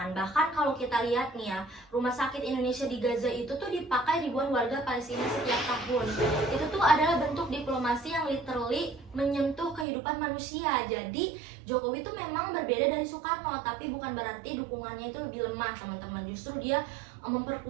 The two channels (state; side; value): drops out; left; at 9.9 s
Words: Bahkan kalau kita lihat nih ya, rumah sakit Indonesia di Gaza itu tuh dipakai ribuan warga Palestina setiap tahun. Itu tuh adalah bentuk diplomasi yang literally menyentuh kehidupan manusia. Jadi Jokowi itu memang berbeda dari Soekarno, tapi bukan berarti dukungannya itu lebih lemah teman-teman. Justru dia